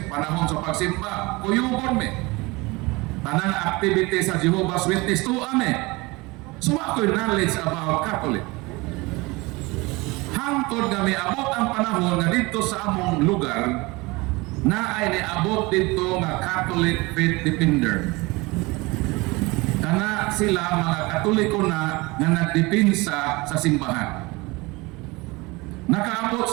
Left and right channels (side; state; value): left; quieter; 23.8 dB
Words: panahon sa pagsimba, kuyugon mi. Tanang activity sa Jehovah's Witness to ame. So ako'y knowledge about Catholic. Hangtod nga may abot ang panahon nga dito sa among lugar na ay niabot dito nga Catholic Faith Defender. Kana sila mga Katoliko na nga nagdipinsa sa simbahan. Nakaabot